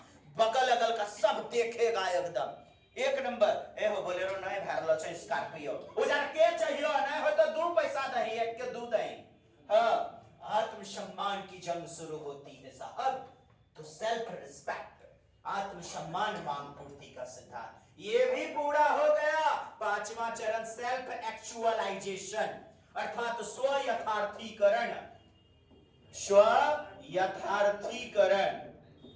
बगल अगल का सब देखेगा एकदम एक नंबर। ए हो बोलेरो नहीं भरलो छै, स्कॉर्पियो उजर के चाहिए, नहीं हो तो 2 पैसा दही, एक के 2 दही। हाँ, आत्मसम्मान की जंग शुरू होती है साहब। तो सेल्फ रिस्पेक्ट, आत्मसम्मान मांग पूर्ति का सिद्धांत ये भी पूरा हो गया। 5वां चरण सेल्फ एक्चुअलाइजेशन, अर्थात स्व यथार्थीकरण। स्व यथार्थीकरण,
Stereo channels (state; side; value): identical; both; correlation 1.00